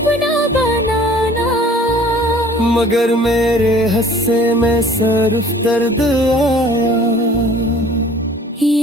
बनाना, मगर मेरे हिस्से में सिर्फ दर्द आया।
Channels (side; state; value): both; normal; correlation 0.50